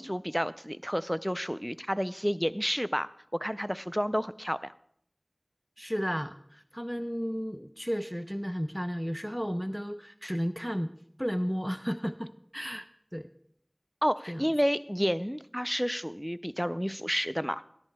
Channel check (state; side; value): identical; both; correlation 1.00